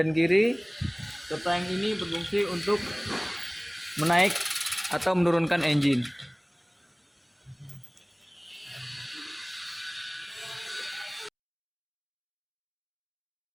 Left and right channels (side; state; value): both; identical; correlation 1.00